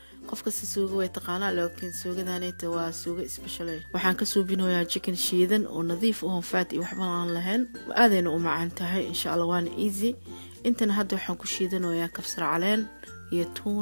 qof kasta suuga way taqaanaa laakiin suugadaanayta waa suuga special waxaan ka suubinoyaa chicken shiidan oo nadiif oo fat iyo waxba aan lahayn aadayna u macaan tahay insha Allah waana easy intana hadda waxaan ku shiidanayaa kabsar caleen iyo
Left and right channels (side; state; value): both; inverted; correlation -1.00